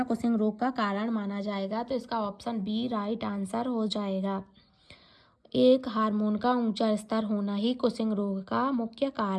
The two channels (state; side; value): identical; both; correlation 1.00